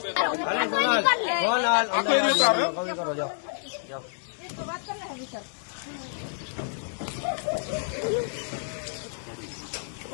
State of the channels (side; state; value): right; silent; digital silence